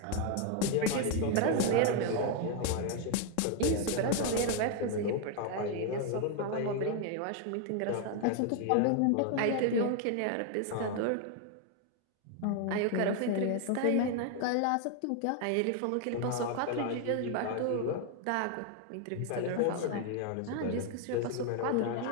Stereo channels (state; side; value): different; both; correlation 0.00